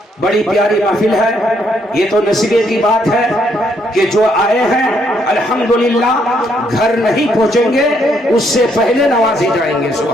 بڑی پیاری محفل ہے، یہ تو نصیبے کی بات ہے کہ جو آئے ہیں الحمدللہ گھر نہیں پہنچیں گے اس سے پہلے نوازے جائیں گے،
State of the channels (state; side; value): normal; both; correlation 0.72